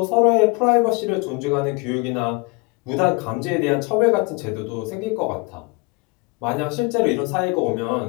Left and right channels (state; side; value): quieter; right; 27.1 dB